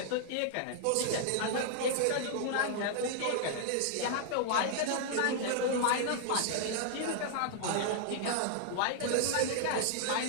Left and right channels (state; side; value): different; both; correlation -0.01